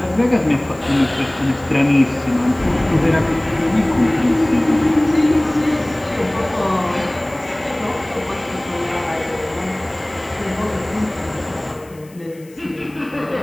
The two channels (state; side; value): noise; left; hiss, 26 dB below the sound